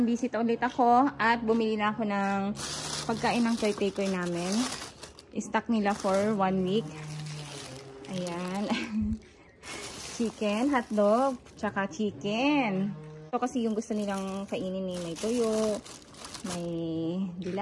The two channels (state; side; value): identical; both; correlation 1.00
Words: visit ulit ako at bumili na ako ng pagkain ng caretaker namin. I-stock nila for 1 week. Ayan. Chicken, hotdog, tsaka chicken. Ito kasi yung gusto nilang kainin ni may tuyo, may